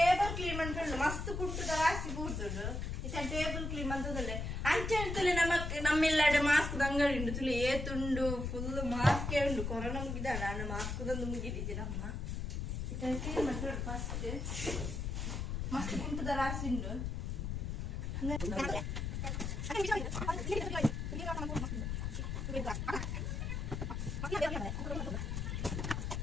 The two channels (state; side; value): noise; left; rumble, 3 dB below the sound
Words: ಕ್ಲೀನ್ ಮಾಡ್ಕೊಂಡು ಮಸ್ತ್ ಕುಟ್ಟುದ ರಾಸಿ ಕೂರ್ತುಂಡು ಇತ್ತೆ ಟೇಬಲ್ ಕ್ಲೀನ್ ಅಂತದಲ್ಲೇ ಅಂಚೆ ತುಲೆ ನಮ್ಮೆಲ್ಲಡೆ ಮಾಸ್ಕ್ ಅಂಗಡಿ ಉಂಡು ತುಲೆ ಏತುಂಡು ಫುಲ್ ಮಾಸ್ಕ್ ಉಂಡು ಕೊರೋನಾ ಮುಗಿದಾಡ ನಾನು ಮಾಸ್ಕ್ ತಂದು ಮುಗಿದಿದ್ದೆ ನಮ್ಮ ಇತ್ತೆ ಕ್ಲೀನ್ ಮಾಡ್ಕೊಂಡು ಫಸ್ಟ್ ಮಸ್ತ್ ಕುಟ್ಟುದ ರಾಸಿ ಉಂಡು